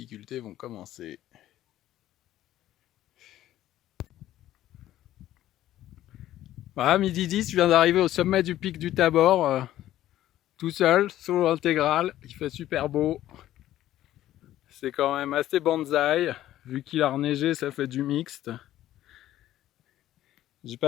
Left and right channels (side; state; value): right; quieter; 13.5 dB